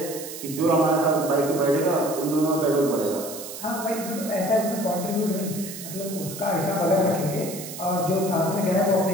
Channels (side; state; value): right; noise; hiss, 11 dB below the sound